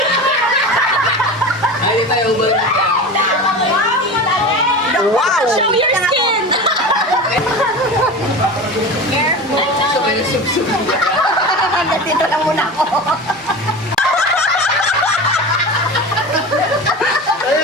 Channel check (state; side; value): normal; both; correlation 0.30